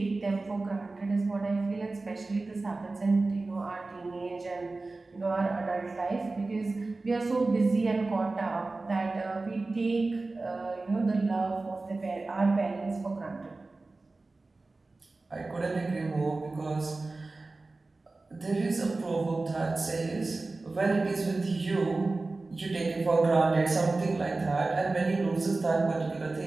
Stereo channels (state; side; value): quieter; left; 3.4 dB